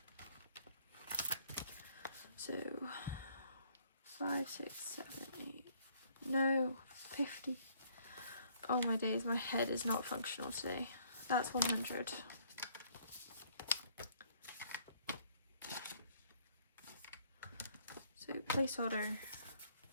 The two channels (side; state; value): both; inverted; correlation -0.63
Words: So 5, 6, 7, 8. No, 50. Oh my days, my head is not functional today. That's 100. So placeholder.